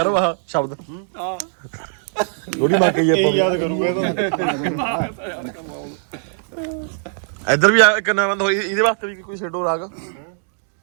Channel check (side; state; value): left; silent; digital silence